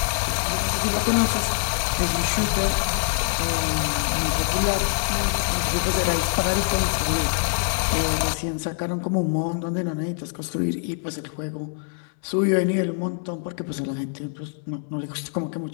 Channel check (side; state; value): right; silent; 62 dB below the other